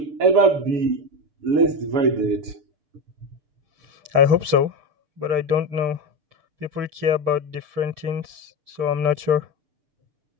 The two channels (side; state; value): left; late; 6.7 ms